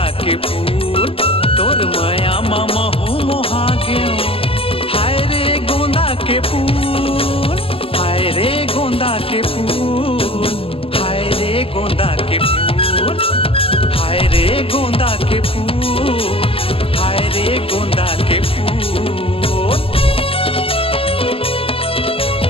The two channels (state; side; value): late; right; 0.27 ms